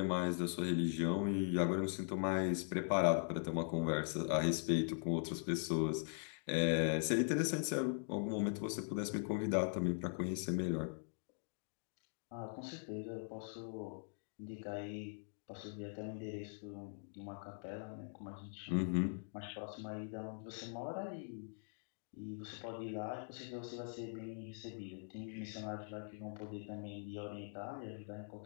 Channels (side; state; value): right; silent; digital silence